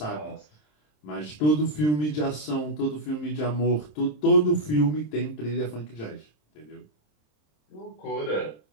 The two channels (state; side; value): late; right; 27 ms